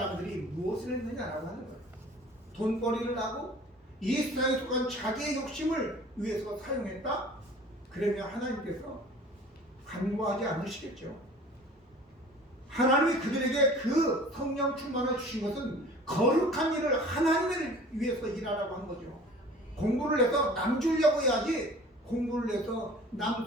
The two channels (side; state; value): both; normal; correlation 0.46